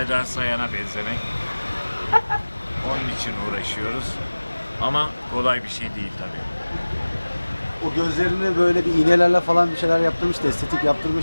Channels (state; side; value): inverted; both; correlation -1.00